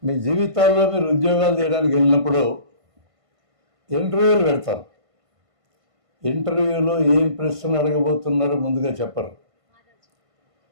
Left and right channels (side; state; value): left; late; 1.5 ms